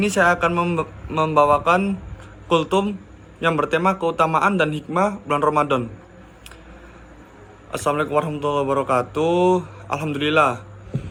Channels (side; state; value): both; identical; correlation 1.00